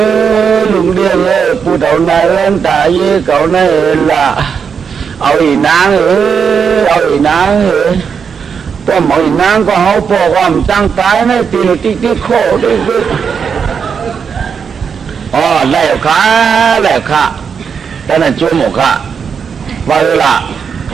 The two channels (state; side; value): quieter; left; 6.5 dB